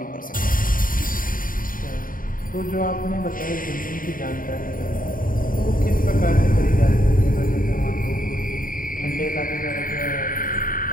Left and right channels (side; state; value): right; late; 0.40 ms